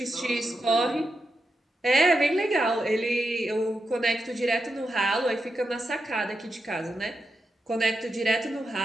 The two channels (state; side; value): normal; both; correlation 0.87